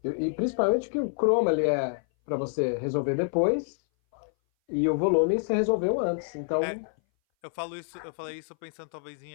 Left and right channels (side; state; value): right; silent; 58 dB below the other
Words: e principalmente que o chroma ele é para você resolver depois e o volume você resolveu antes. Então, Eu falei isso pensando talvez em